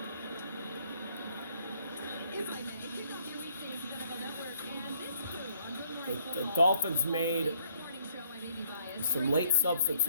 The Dolphins made some late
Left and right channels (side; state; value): both; inverted; correlation -0.67